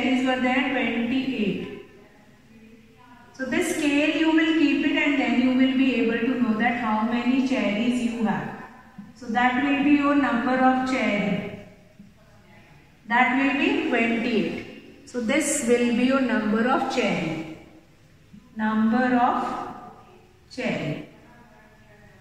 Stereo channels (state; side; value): identical; both; correlation 1.00